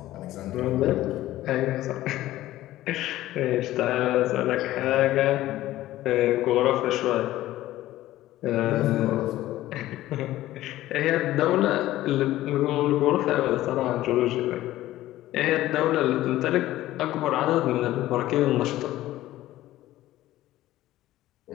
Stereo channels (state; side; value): quieter; right; 15.2 dB